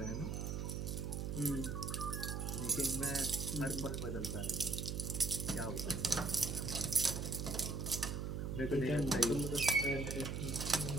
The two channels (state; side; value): noise; right; hum, 3 dB below the sound